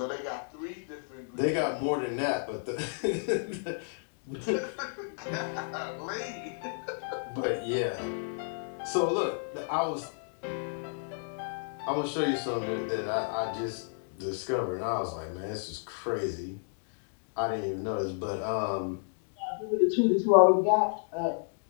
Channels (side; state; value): right; silent; digital silence